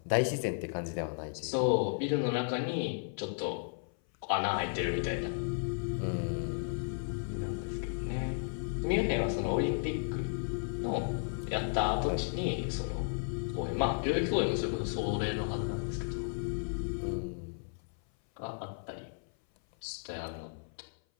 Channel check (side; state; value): right; silent; 55 dB below the other